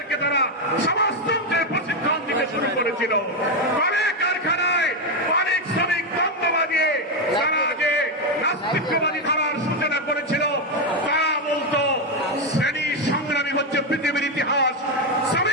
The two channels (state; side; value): normal; both; correlation 0.06